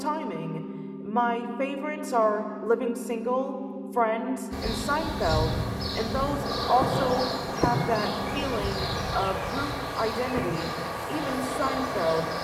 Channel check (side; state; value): both; identical; correlation 1.00